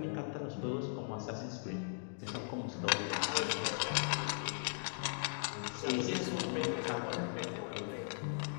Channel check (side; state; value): right; silent; digital silence